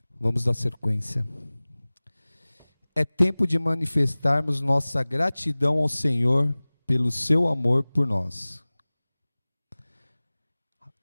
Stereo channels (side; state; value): both; inverted; correlation -1.00